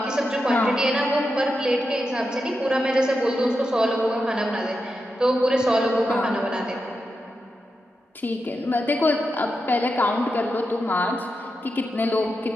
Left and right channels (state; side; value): normal; both; correlation 0.88